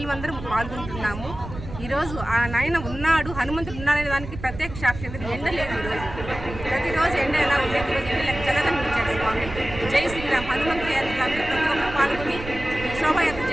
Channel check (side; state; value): right; noise; rumble, 11 dB below the sound